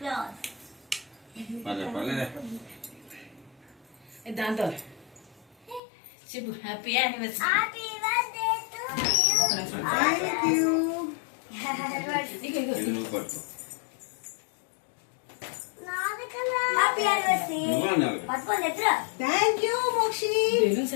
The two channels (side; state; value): right; drops out; at 5.8 s